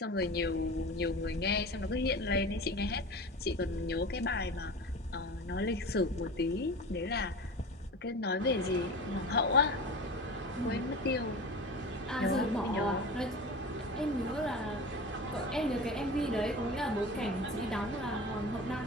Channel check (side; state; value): both; normal; correlation 0.33